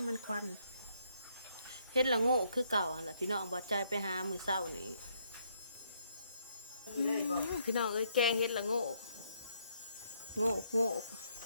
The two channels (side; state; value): both; inverted; correlation -0.73